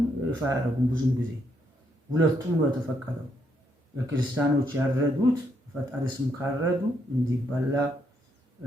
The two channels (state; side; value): normal; both; correlation 0.75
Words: ይፋ ያደረጉም ብዙም ጊዜ ሁለቱም ነው የተፈቀደው። የክርስቲያኖች ያረዱት ፈጣሪ ስም ካረዱ እንዲበላ